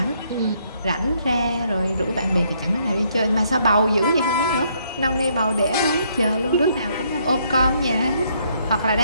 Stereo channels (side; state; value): both; inverted; correlation -0.70